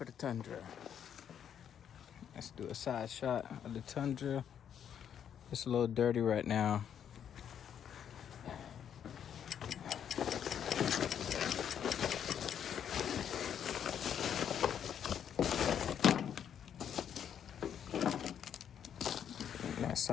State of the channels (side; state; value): right; quieter; 8.8 dB